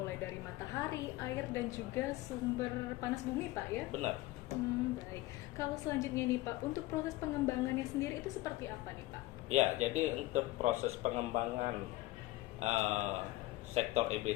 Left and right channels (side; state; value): right; quieter; 18.7 dB